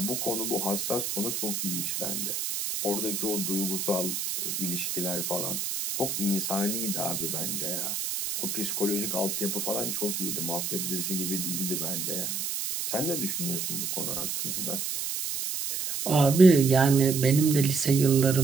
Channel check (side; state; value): right; noise; hiss, 3 dB below the sound